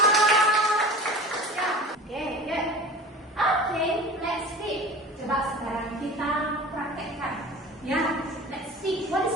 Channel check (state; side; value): normal; both; correlation 0.38